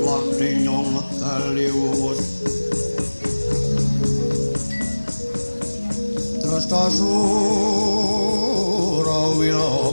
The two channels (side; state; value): both; inverted; correlation -1.00